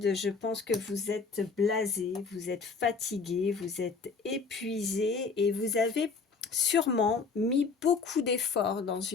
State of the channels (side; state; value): right; quieter; 4.8 dB